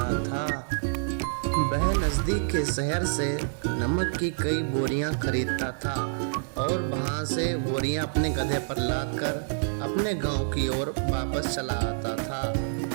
था। वह नज़दीक के शहर से नमक की कई बोरियां खरीदता था और वहां से बोरियां अपने गधे पर लाद कर अपने गांव की ओर वापस चला आता था।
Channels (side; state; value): left; silent; digital silence